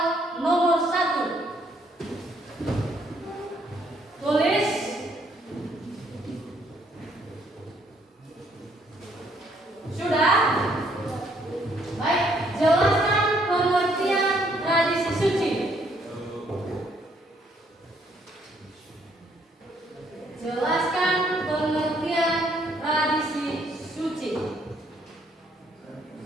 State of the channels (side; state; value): both; normal; correlation 0.68